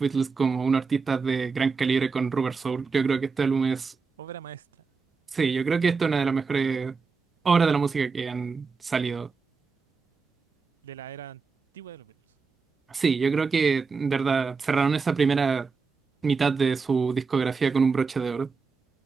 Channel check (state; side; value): quieter; left; 4.9 dB